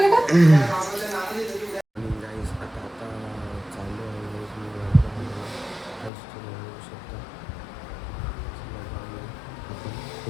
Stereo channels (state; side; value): drops out; right; at 6.1 s